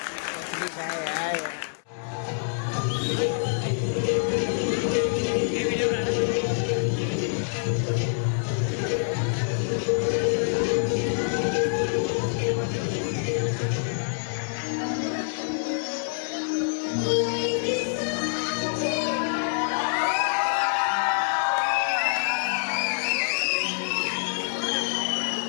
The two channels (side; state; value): right; silent; 61 dB below the other